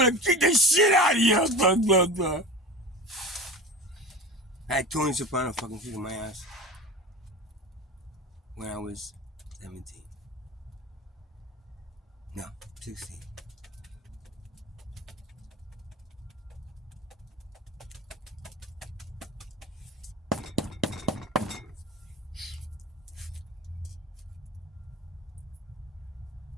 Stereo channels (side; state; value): both; normal; correlation 0.31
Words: kick the shit out of you. Blah, blah, blah. I had Tony Soprano fucking kicking my ass when I was 17. No, 16.